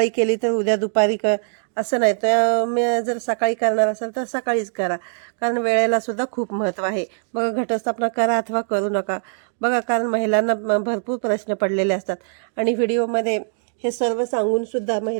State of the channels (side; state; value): left; silent; digital silence